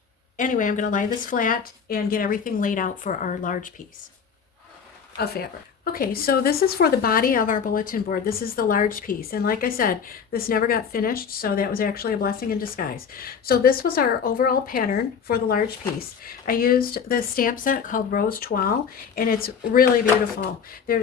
anyway, I'm going to lie this flat and get everything laid out for our large piece of fabric. Okay, so this is for the body of our bulletin board. This is the large piece. And like I said, this never got finished, so that was actually a blessing in disguise. So this was our overall pattern for the large piece. I used the stamp set called Rose Toile, and it's really beautiful.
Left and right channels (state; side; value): quieter; right; 6.7 dB